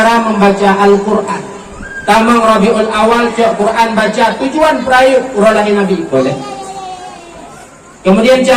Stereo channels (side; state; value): both; identical; correlation 1.00